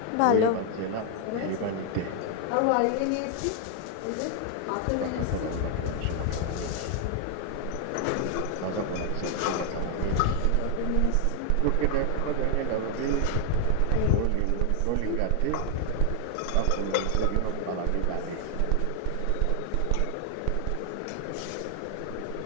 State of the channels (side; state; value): both; different; correlation 0.00